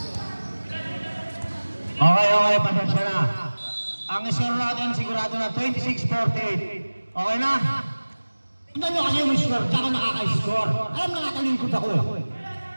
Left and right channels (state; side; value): inverted; both; correlation -1.00